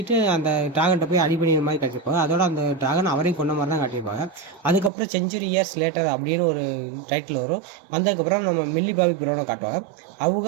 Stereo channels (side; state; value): left; drops out; at 4.9 s